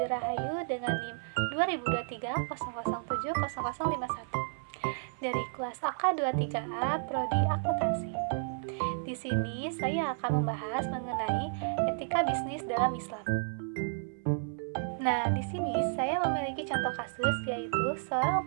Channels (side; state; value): left; silent; 56 dB below the other